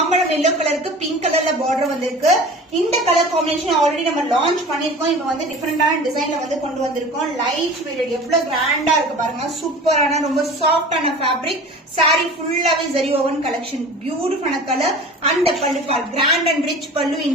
எல்லோ கலருக்கு பிங்க் கலர்ல பார்டர் வந்திருக்கு. இந்த கலர் காம்பினேஷன் ஆல்ரெடி நம்ம லான்ச் பண்ணிருக்கோம். இப்ப வந்து டிஃபரெண்டான டிசைன்ல வந்து கொண்டு வந்திருக்கோம். லைட் வெயிட், எவ்வளவு கிராண்டா இருக்கு பாருங்க. சூப்பரான ரொம்ப சாஃப்டான ஃபேப்ரிக். சாரி ஃபுல்லாவே ஜரி ஓவன் கலெக்ஷன். பியூட்டிஃபுல்லான colour. And pallu part grand and rich pallu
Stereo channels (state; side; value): normal; both; correlation 0.39